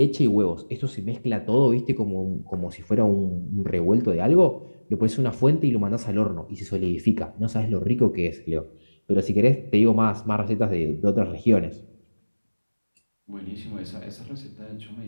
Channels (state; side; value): inverted; both; correlation -1.00